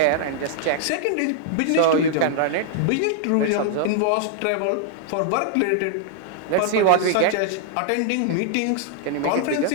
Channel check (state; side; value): different; both; correlation -0.01